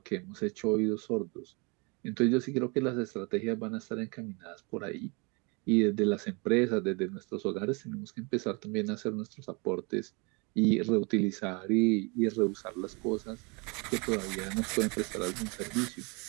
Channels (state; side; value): quieter; left; 30.4 dB